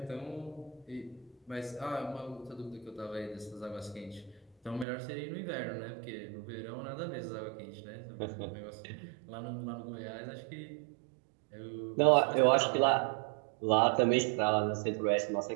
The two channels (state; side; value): drops out; left; at 4.9 s